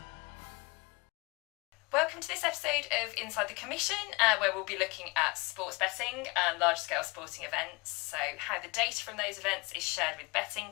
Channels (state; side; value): quieter; right; 26.2 dB